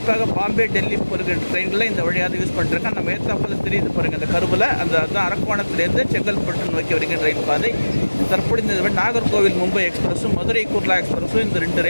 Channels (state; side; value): inverted; both; correlation -1.00